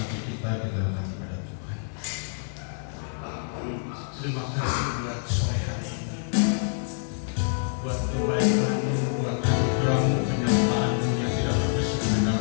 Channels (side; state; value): right; silent; 60 dB below the other